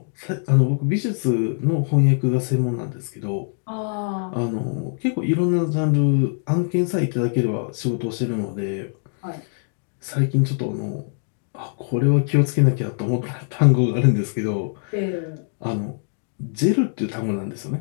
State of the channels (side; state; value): right; silent; digital silence